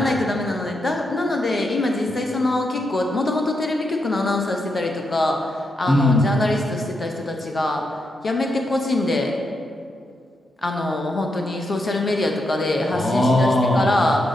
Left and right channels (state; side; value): normal; both; correlation 0.83